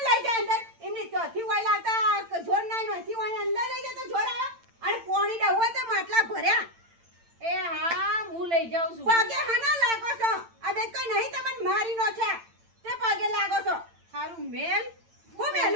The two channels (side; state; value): left; late; 8.9 ms